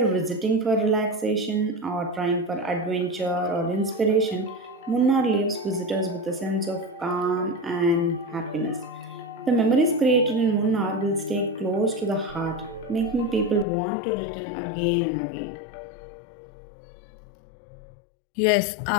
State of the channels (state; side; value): drops out; right; at 13.7 s